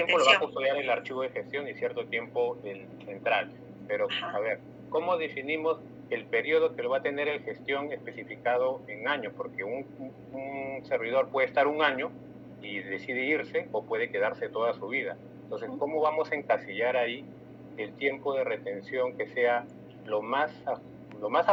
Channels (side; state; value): both; identical; correlation 1.00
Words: lo va a custodiar el archivo de gestión y cierto tiempo el central. Pero, a ver, ¿cómo definimos el periodo que lo va a tener el gestión especificado en años? Porque un servidor puede estar un año y decide irse o puede quedarse toda su vida. Entonces, ¿cómo vamos a encasillar ahí el tiempo de retención que sea lo más